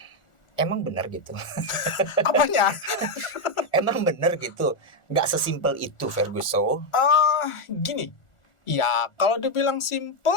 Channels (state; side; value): late; right; 1.4 ms